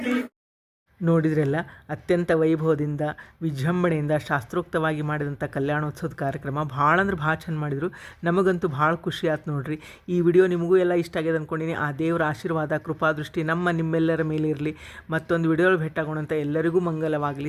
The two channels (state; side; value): identical; both; correlation 1.00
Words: ನೋಡಿದ್ರಲ್ಲ, ಅತ್ಯಂತ ವೈಭವದಿಂದ ವಿಜೃಂಭಣೆಯಿಂದ ಶಾಸ್ತ್ರೋಕ್ತವಾಗಿ ಮಾಡಿದಂಥ ಕಲ್ಯಾಣೋತ್ಸವದ ಕಾರ್ಯಕ್ರಮ ಭಾಳ ಅಂದ್ರೆ ಭಾಳ ಚಂದ ಮಾಡಿದರು. ನಮಗಂತೂ ಭಾಳ ಖುಷಿ ಆಯ್ತು ನೋಡ್ರಿ. ಈ ವಿಡಿಯೋ ನಿಮಗೂ ಎಲ್ಲ ಇಷ್ಟ ಆಗ್ಯದ ಅಂದ್ಕೊಂಡಿನಿ. ಆ ದೇವರ ಆಶೀರ್ವಾದ ಕೃಪಾದೃಷ್ಟಿ ನಿಮ್ಮೆಲ್ಲರ ಮೇಲೆ ಇರಲಿ. ಮತ್ತೊಂದು ವಿಡಿಯೋ ಭೇಟಾಗೋಣಂತ. ಎಲ್ಲರಿಗೂ